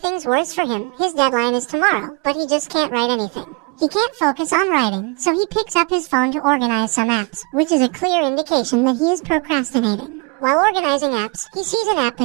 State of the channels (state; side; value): quieter; left; 29.9 dB